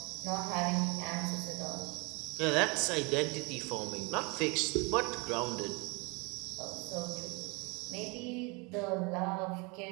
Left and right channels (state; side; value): quieter; left; 29.3 dB